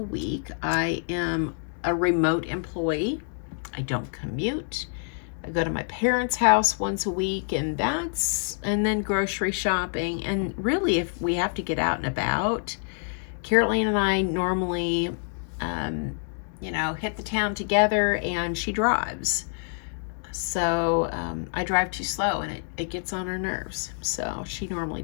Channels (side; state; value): right; silent; 60 dB below the other